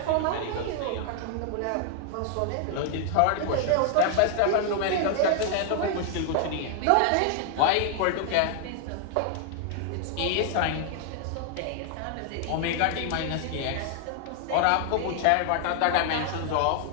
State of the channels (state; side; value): different; both; correlation 0.00